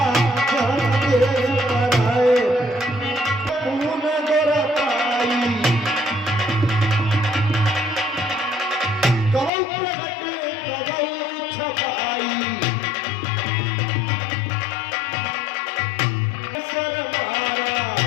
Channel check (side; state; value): right; drops out; at 9.5 s